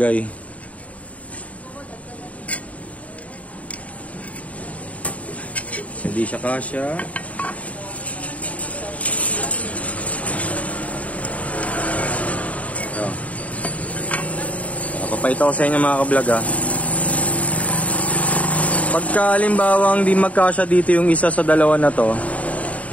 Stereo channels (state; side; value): late; right; 0.068 ms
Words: Hindi siya kasya. Ito. Papakita ko sa inyo mga ka-vlog ha. Pagka halimbawang di magkasya dito yung isa sa dalawa na to.